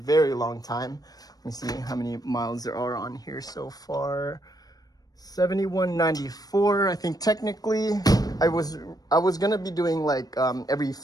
long time. Let me see how many miles there are on here so far. 7194. I think technically I was gonna be doing like every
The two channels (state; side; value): late; right; 0.18 ms